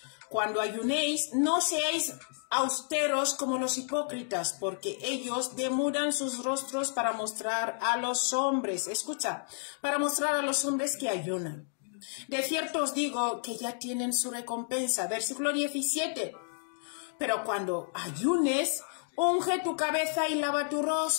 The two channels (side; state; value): right; silent; digital silence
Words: Cuando ayunéis, no seáis austeros como los hipócritas, porque ellos demudan sus rostros para mostrar a los hombres, escucha, para mostrar a los hombres que ayunan. De cierto os digo que ya tienen su recompensa. Versículo 17. Pero cuando ayunes, unge tu cabeza y lava tu